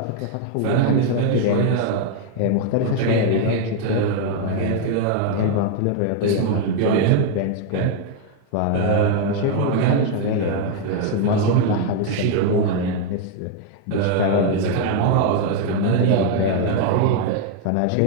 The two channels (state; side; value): different; both; correlation 0.00